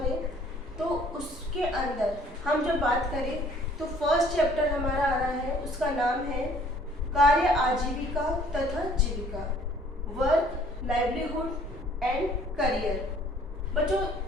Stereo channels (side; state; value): both; normal; correlation 0.57